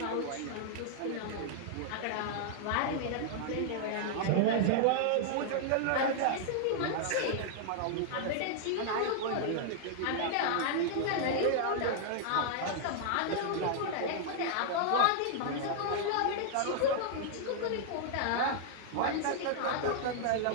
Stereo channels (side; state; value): both; different; correlation -0.01